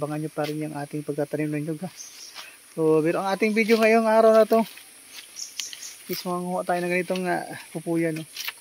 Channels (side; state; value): both; identical; correlation 1.00